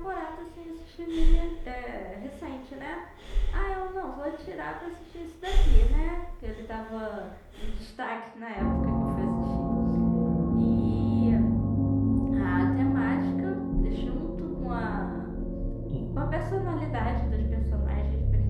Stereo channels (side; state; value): both; identical; correlation 1.00